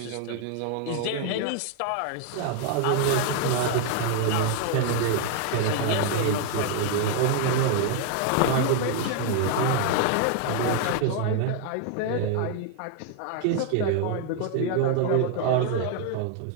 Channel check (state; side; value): different; both; correlation 0.00